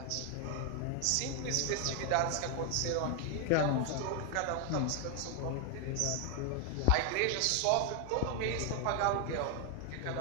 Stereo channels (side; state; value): both; different; correlation 0.00